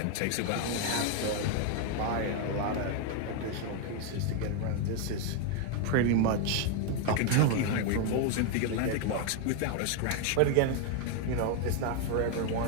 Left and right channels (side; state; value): both; different; correlation 0.01